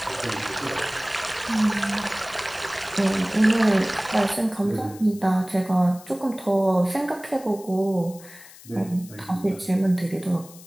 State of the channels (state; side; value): noise; left; hiss, 20 dB below the sound